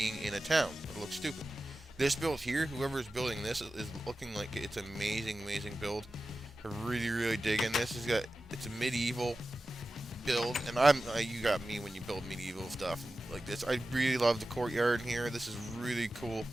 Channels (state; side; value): normal; both; correlation 0.94